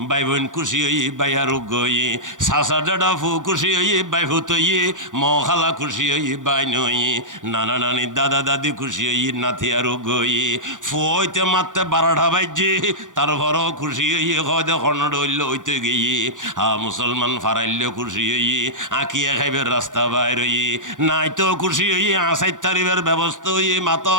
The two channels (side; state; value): left; late; 0.87 ms